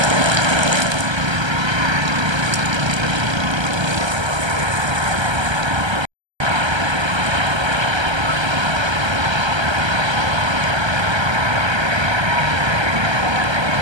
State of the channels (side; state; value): left; late; 1.3 ms